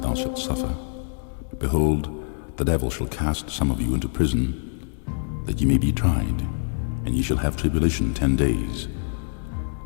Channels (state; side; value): silent; right; digital silence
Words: shalt suffer. Behold, the devil shall cast some of you into prison, that ye may be tried, and ye shall have tribulation 10 days.